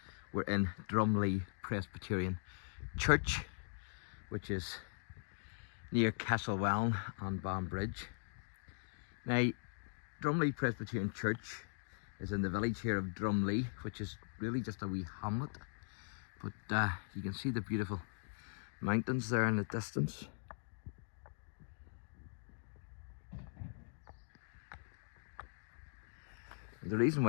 we're in Drumlee Presbyterian Church, which is near Castlewellan and Banbridge. Now, Drumlee Presbyterian Church is in the village here of Drumlee, which is really just a wee hamlet. But you can see the beautiful mountains there in the distance. And the reason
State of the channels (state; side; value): silent; right; digital silence